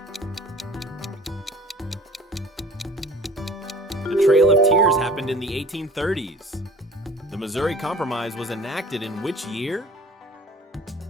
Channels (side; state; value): both; normal; correlation 0.46